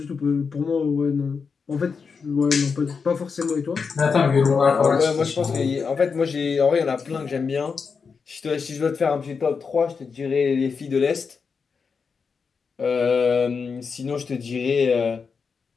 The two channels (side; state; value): right; quieter; 5.5 dB